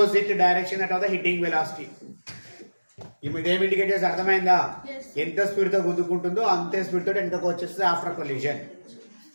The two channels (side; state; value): both; inverted; correlation -1.00